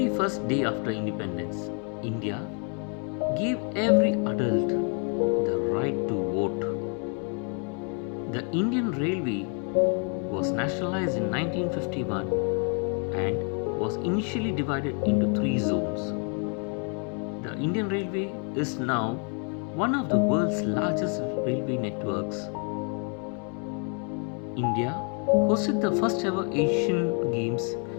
first day after independence, India gave every adult the right to vote. The Indian Railway was nationalized in 1951 and was initially divided into three zones. The Indian Railway is now one of the world's largest railway networks. India hosted the first ever Asian Games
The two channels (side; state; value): right; quieter; 39.6 dB